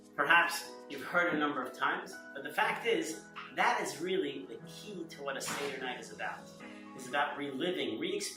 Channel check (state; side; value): identical; both; correlation 1.00